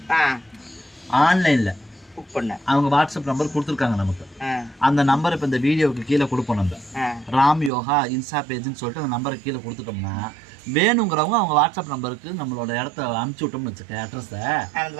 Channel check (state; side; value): drops out; left; at 7.7 s